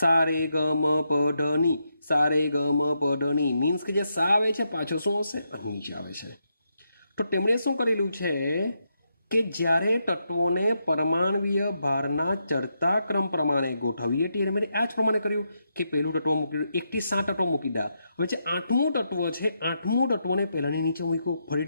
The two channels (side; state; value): both; inverted; correlation -0.83